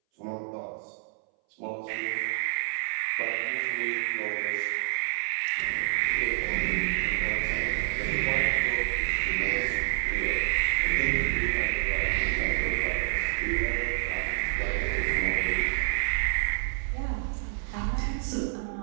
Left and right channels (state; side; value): silent; left; 59 dB below the other